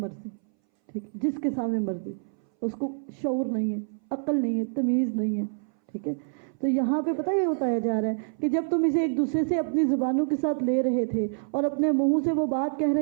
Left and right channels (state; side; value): silent; left; 60 dB below the other